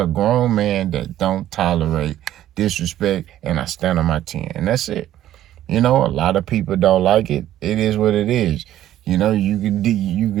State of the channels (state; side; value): quieter; left; 12.7 dB